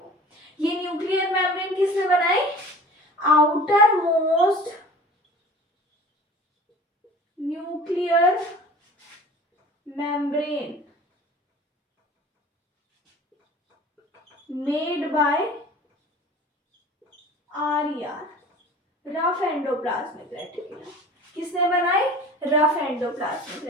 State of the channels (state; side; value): normal; both; correlation 0.43